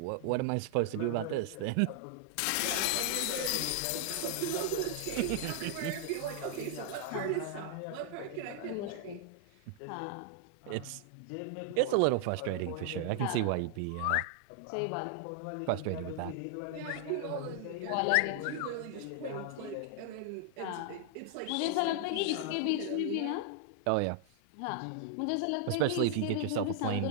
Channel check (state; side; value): different; both; correlation -0.01